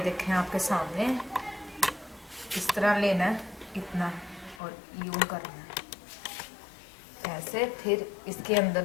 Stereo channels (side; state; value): right; drops out; at 4.6 s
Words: आपके सामने, इस तरह लेना है इतना और यूं करना है ऐसे। फिर इसके अंदर